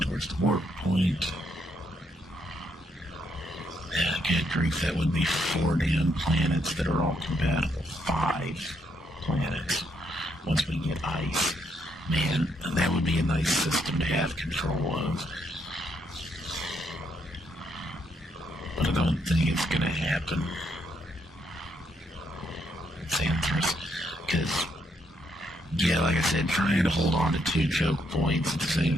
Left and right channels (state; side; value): normal; both; correlation 0.76